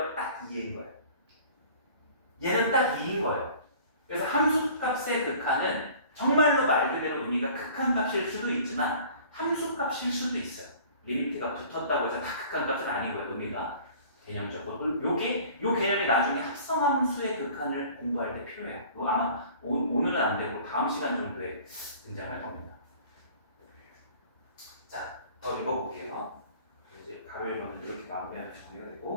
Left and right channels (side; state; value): both; inverted; correlation -0.48